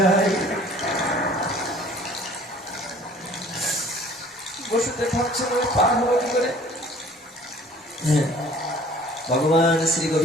বসুদেব ভাবছেন, ওই পার হলো কি করে? হ্যাঁ, ভগবান শ্রী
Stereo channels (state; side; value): normal; both; correlation 0.51